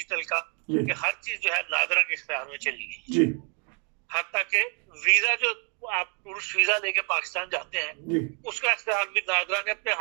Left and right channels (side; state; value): left; quieter; 37.4 dB